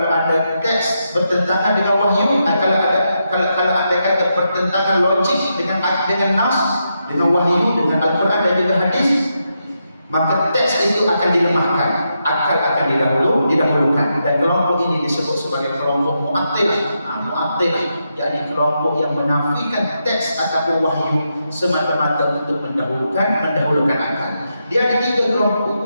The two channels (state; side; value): inverted; both; correlation -0.84